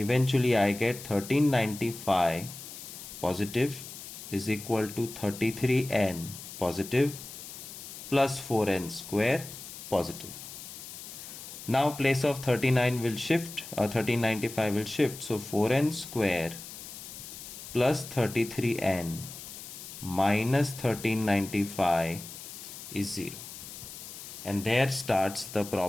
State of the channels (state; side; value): noise; left; hiss, 12 dB below the sound